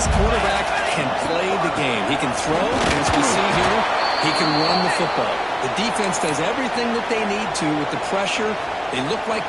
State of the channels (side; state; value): both; identical; correlation 1.00